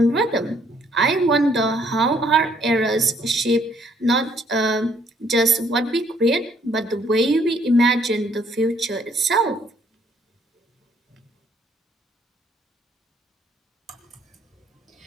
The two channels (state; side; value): normal; both; correlation 0.65